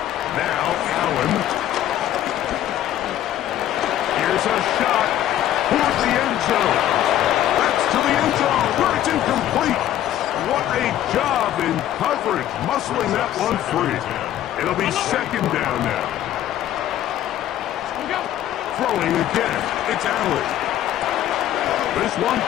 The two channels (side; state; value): right; quieter; 12.3 dB